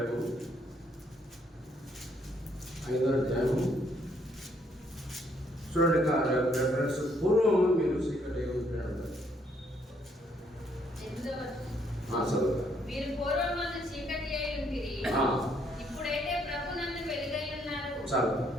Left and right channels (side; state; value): both; normal; correlation 0.69